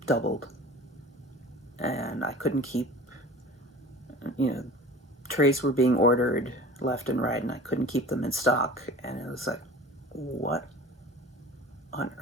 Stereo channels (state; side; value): normal; both; correlation 0.41